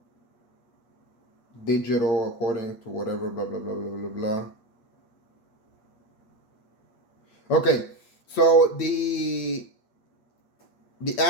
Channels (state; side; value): late; right; 8.5 ms